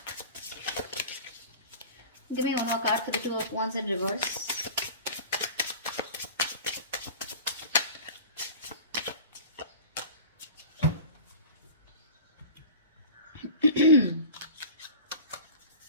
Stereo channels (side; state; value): both; inverted; correlation -0.36